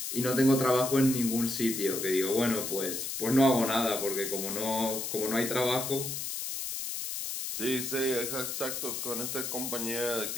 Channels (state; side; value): noise; left; hiss, 4 dB below the sound